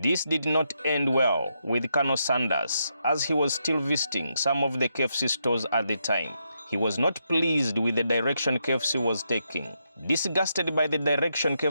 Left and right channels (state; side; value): inverted; both; correlation -0.81